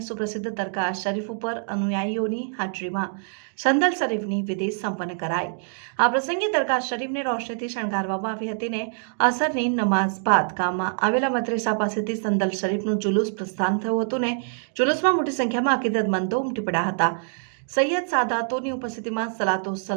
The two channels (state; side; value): silent; left; digital silence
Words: સુપ્રસિદ્ધ દરગાહ શરીફ ઉપર અનુયાયીઓની હાજરીમાં સંદલ શરીફની વિધિ સંપન્ન કરાઈ. આ પ્રસંગે દરગાહ શરીફને રોશનીથી શણગારવામાં આવી હતી ને અસરની નમાઝ બાદ ગામમાં આવેલા મદ્રેસા પાસેથી સંદલ શરીફનું જુલુસ પ્રસ્થાન થયું હતું ને જુલુસમાં મોટી સંખ્યામાં અકીદતમંદો ઉમટી પડ્યા હતા. સૈયદ સાદાતોની ઉપસ્થિતિમાં સલાતો